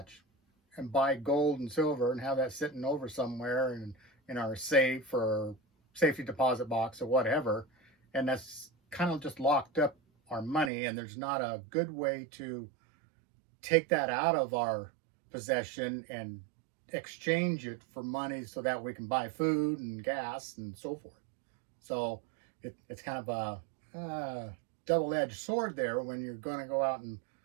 and buy gold and silver and have that sitting over somewhere in our safe or safety deposit box or whatever, and that's kind of just locked up our money, and there's not a good way to take that out of our possession and exchange it for money so that we can buy food and gas and so forth. So it's kind of a double-edged sword there when you're going to go out and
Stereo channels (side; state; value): left; drops out; at 10.7 s